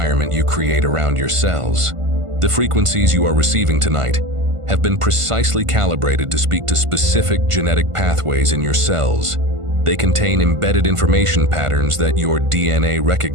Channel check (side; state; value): left; late; 1.5 ms